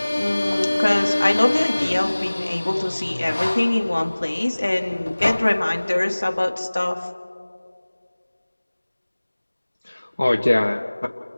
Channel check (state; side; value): inverted; both; correlation -1.00